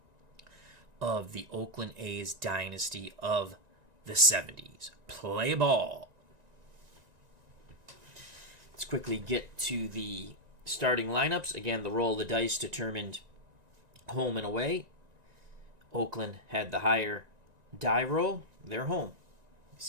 of the Oakland A's dynasty of the 70s. Play ball. Let's quickly get to the starting lineups. Again, the roll of the dice determined home and away. Oakland had the higher die roll. They're home.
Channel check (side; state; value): left; late; 1.9 ms